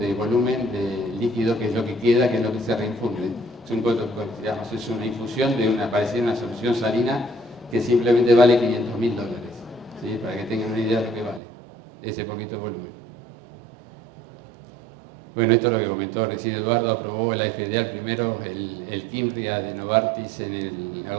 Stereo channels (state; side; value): drops out; left; at 11.4 s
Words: volumen de líquido, que es lo que queda, que es lo que se reinfunde. Es una infusión de parecida a una solución salina que simplemente vale $500.000, ¿sí? Para que tengan una idea de lo que vale ese poquito volumen. Bueno, esto es lo que comentó recién Eduardo. Aprobó la FDA primero el Kimbria de Novartis en